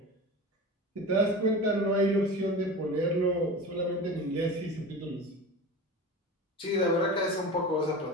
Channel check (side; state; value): both; normal; correlation 0.31